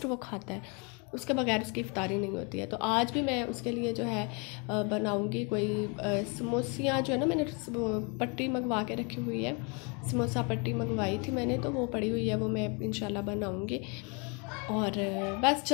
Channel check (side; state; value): right; quieter; 33.3 dB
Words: वो खाता है, उसके बगैर उसकी इफ्तारी नहीं होती है। तो आज भी मैं उसके लिए जो है बनाऊंगी कोई समोसियाँ जो है ना, मैंने पट्टी मंगवा के रखी हुई है, समोसा पट्टी मंगवाई थी मैंने, तो वो पड़ी हुई है, वो मैं इंशाल्लाह बनाऊंगी। और बस